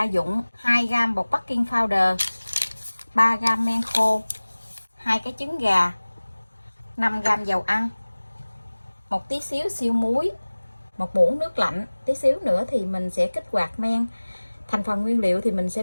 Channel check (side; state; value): both; inverted; correlation -1.00